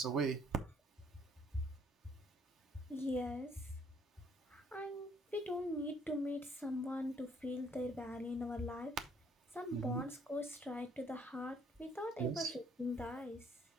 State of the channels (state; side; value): normal; both; correlation 0.63